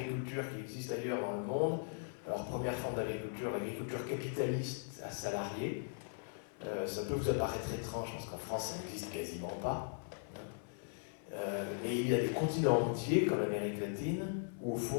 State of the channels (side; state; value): right; silent; 52 dB below the other